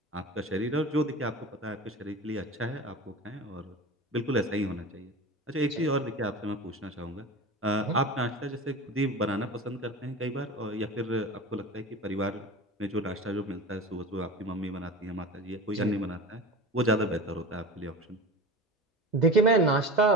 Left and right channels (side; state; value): both; normal; correlation 0.32